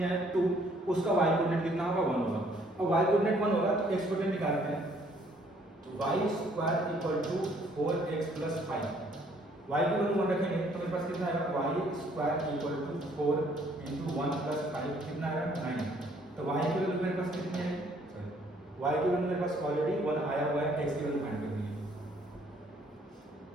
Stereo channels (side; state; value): both; normal; correlation 0.63